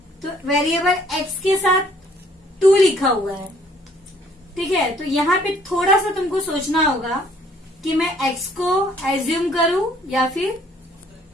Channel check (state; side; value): normal; both; correlation 0.61